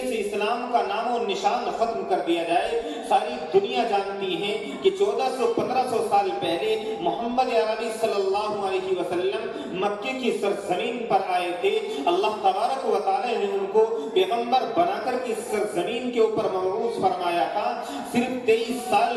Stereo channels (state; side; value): identical; both; correlation 1.00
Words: سے اسلام کا نام و نشان ختم کر دیا جائے۔ ساری دنیا جانتی ہے کہ 1400-1500 سال پہلے محمد عربی صلی اللہ علیہ وسلم مکے کی سرزمین پر آئے تھے۔ اللہ تبارک و تعالی نے ان کو پیغمبر بنا کر کے سرزمین کے اوپر مبعوث فرمایا تھا۔ صرف 23 سال